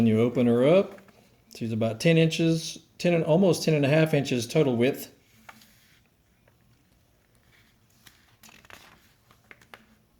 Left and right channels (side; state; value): both; identical; correlation 1.00